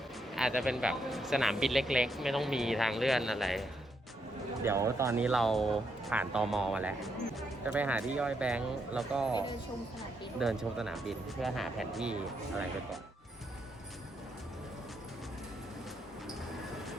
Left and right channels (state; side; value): normal; both; correlation 0.78